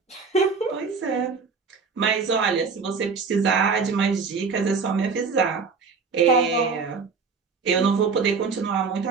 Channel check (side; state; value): left; quieter; 5.0 dB